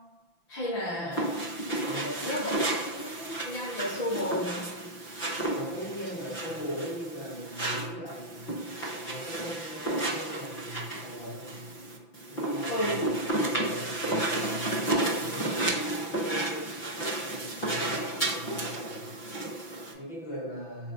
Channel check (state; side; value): late; right; 5.9 ms